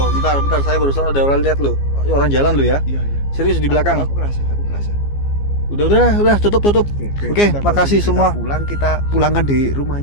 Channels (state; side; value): late; right; 15 ms